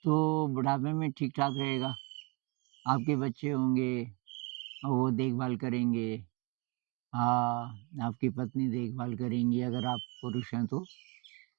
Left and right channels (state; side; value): quieter; left; 29.6 dB